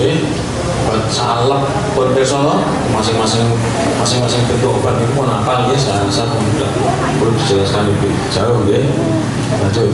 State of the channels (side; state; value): both; identical; correlation 1.00